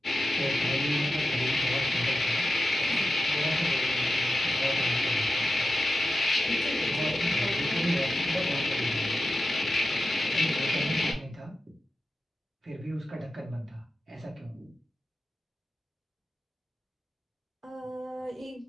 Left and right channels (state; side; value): normal; both; correlation 0.91